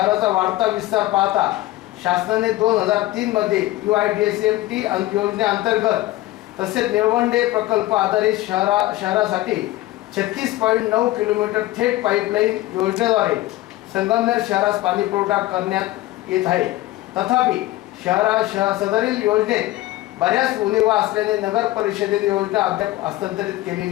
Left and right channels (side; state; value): right; quieter; 17.0 dB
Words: वाढता विस्तार पाहता शासनाने 2003 मध्ये UIDSMT योजनेअंतर्गत तसेच निळवंडे प्रकल्प आधारित शहरासाठी 36.9 किलोमीटर थेट पाईपलाईन योजनेद्वारे संगमनेर शहरास पाणी पुरवठा करण्यात येत आहे. तथापि सदरील योजनेत बऱ्याच उणिवा असल्याने नगर परिषदेने योजना अद्याप हस्तांतरित